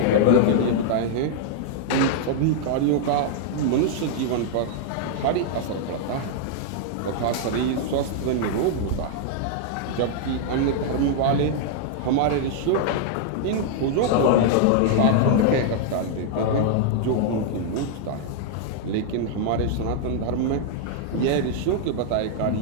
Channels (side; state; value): both; different; correlation -0.01